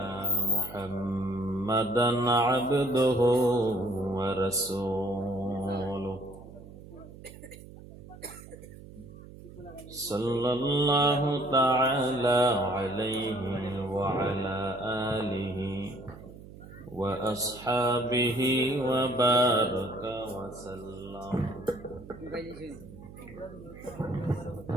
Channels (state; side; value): noise; right; hum, 17 dB below the sound